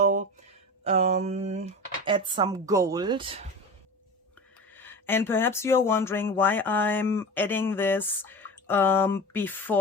add some gold. And perhaps you're wondering why I'm adding this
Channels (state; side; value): normal; both; correlation 0.30